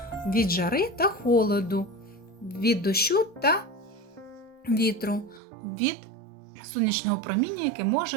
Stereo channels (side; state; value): left; drops out; at 5.4 s